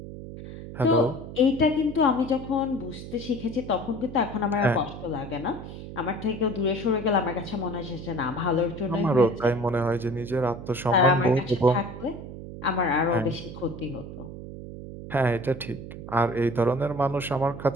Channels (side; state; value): right; noise; hum, 11 dB below the sound